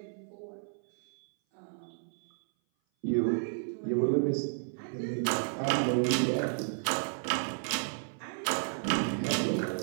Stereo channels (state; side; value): silent; left; 56 dB below the other